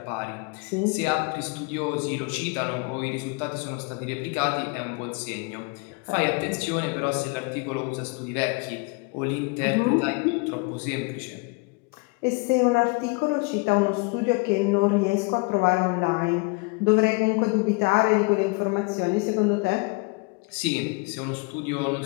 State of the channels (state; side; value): quieter; right; 29.6 dB